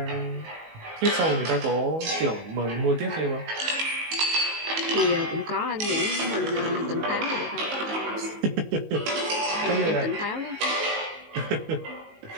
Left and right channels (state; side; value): late; left; 19 ms